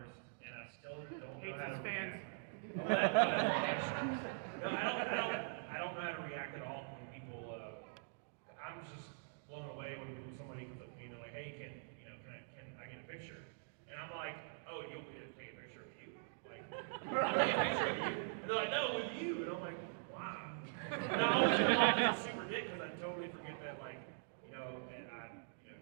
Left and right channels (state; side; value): silent; left; digital silence